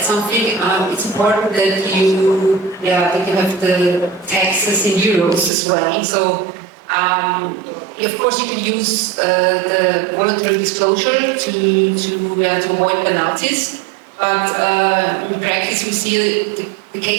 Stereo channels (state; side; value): drops out; left; at 5.5 s